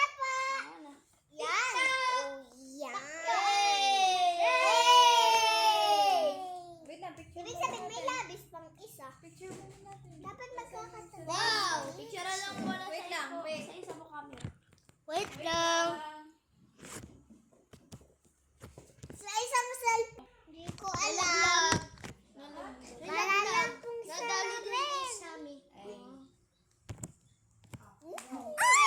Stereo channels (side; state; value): both; identical; correlation 1.00